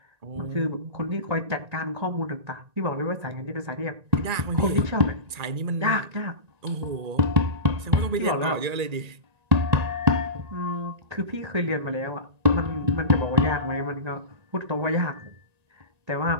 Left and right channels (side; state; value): left; late; 1.9 ms